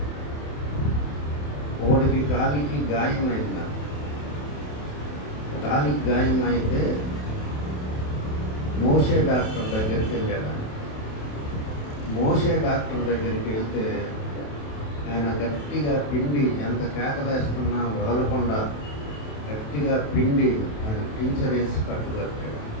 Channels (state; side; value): late; right; 27 ms